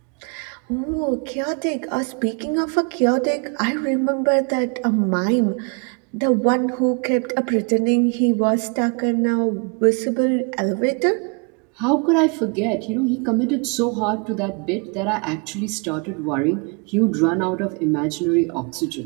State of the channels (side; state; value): left; quieter; 34.9 dB